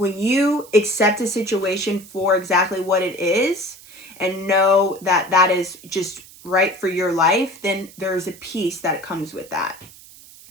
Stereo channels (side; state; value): right; noise; hiss, 21 dB below the sound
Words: you accept a situation for exactly what it is and know that that is just right for your life, then there's a peace that comes with that.